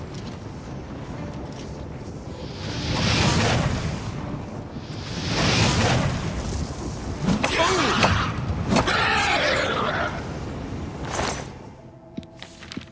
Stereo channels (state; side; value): identical; both; correlation 1.00